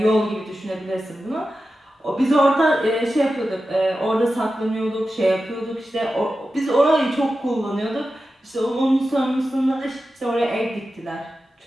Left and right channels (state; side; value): normal; both; correlation 0.92